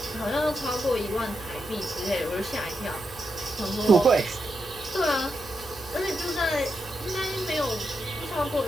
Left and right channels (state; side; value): noise; left; hum, 18 dB below the sound